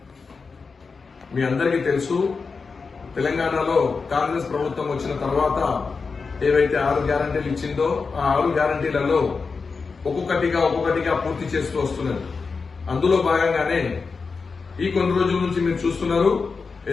మీ అందరికీ తెలుసు, తెలంగాణలో కాంగ్రెస్ ప్రభుత్వం వచ్చిన తర్వాత ఏవైతే 6 గ్యారంటీలు ఇచ్చిందో ఆ 6 గ్యారంటీలలో ఒక్కొక్కటిగా పూర్తి చేస్తూ వస్తున్నది. అందులో భాగంగానే ఈ కొన్ని రోజుల నుంచి మీరు చూస్తున్నారు,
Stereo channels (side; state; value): right; quieter; 4.7 dB